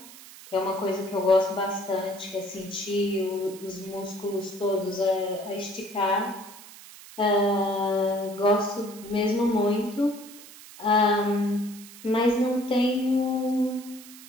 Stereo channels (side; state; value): right; noise; hiss, 18 dB below the sound